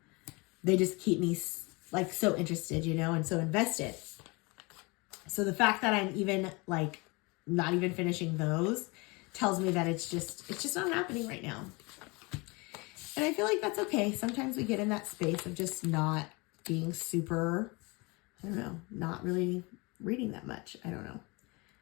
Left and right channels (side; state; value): right; quieter; 26.9 dB